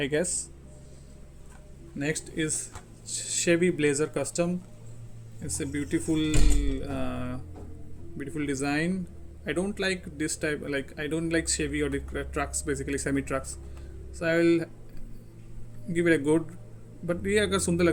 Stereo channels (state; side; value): identical; both; correlation 1.00